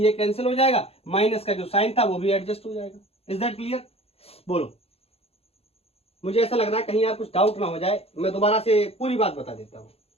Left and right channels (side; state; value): right; late; 0.29 ms